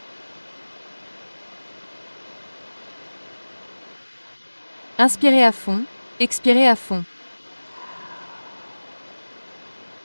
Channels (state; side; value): inverted; both; correlation -1.00